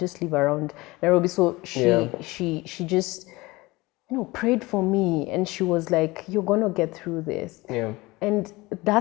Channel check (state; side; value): quieter; right; 21.7 dB